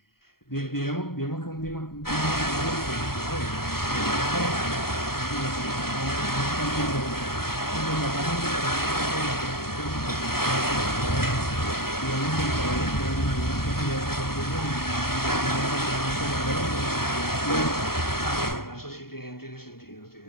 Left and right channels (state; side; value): late; right; 0.94 ms